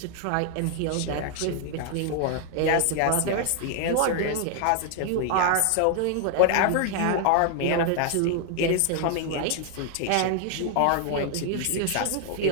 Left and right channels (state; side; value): different; both; correlation 0.00